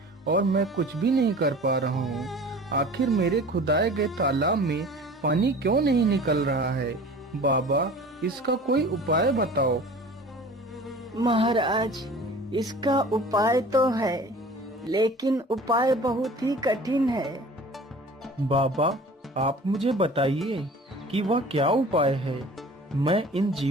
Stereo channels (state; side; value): normal; both; correlation 0.43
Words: और मैं कुछ भी नहीं कर पा रहा हूं। आखिर मेरे खुदाए गए तालाब में पानी क्यों नहीं निकल रहा है? बाबा, इसका कोई उपाय बताओ। महाराज, इसका उपाय तो है, लेकिन उपाय बहुत ही कठिन है। बाबा, आप मुझे बताइए कि वह क्या उपाय है। मैं इन